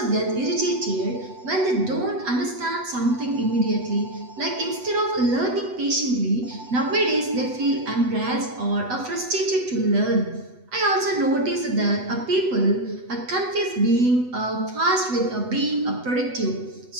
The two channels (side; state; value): left; late; 8.0 ms